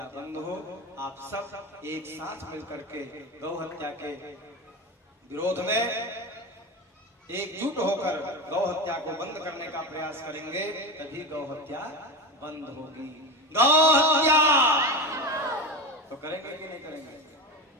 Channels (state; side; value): normal; both; correlation 0.22